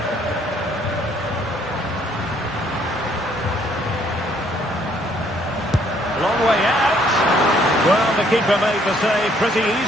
Long way out. Well, the keeper made the save pretty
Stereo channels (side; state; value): both; normal; correlation 0.65